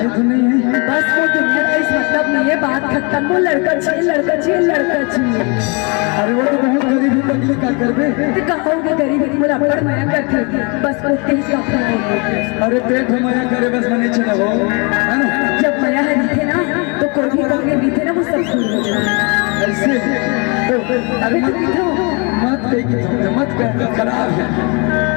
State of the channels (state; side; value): quieter; right; 31.6 dB